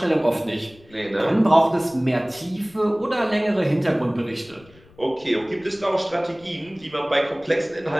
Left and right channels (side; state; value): left; noise; rumble, 26 dB below the sound